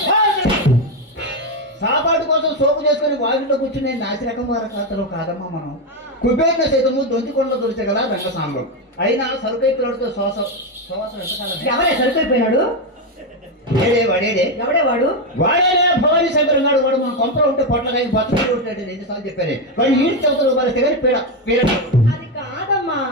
సాపాటు కోసం సోపు చేసుకుని వాకిట్లో కూర్చుని నాసిరకం వారి ఖాతాలో కాదమ్మా మనం. కుబేర్ల సైతము దొంతికొండలో దొరిచగల రంగసాంబం అయినా సరుకైపోయాడుతో ఎవరే సరిపోయిపోయినాడు? ఎవడే వాడు? వాడేనే భవానీ శంకర్ ఉన్నాడు. వాడు మన కొంపలో ఉంటే పొట్లకాయ బతులు ఉంటాడు. ఎన్నిసార్లు చెప్పాను వాడు ఈ చదువులు మరి తెగని పీడ. అది కాదమ్మా,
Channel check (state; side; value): normal; both; correlation 0.08